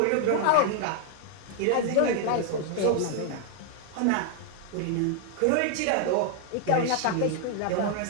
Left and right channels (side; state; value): both; different; correlation 0.00